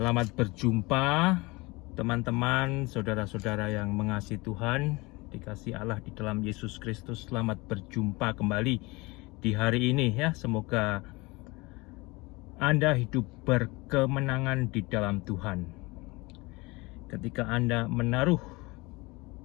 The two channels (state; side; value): quieter; right; 24.0 dB